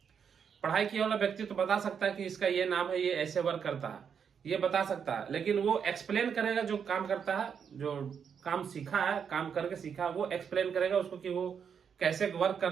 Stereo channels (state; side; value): quieter; left; 7.2 dB